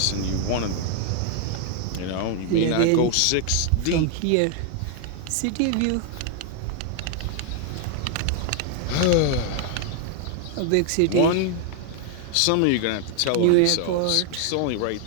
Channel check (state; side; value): different; both; correlation 0.00